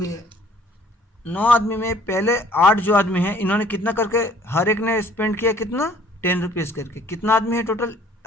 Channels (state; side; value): normal; both; correlation 0.56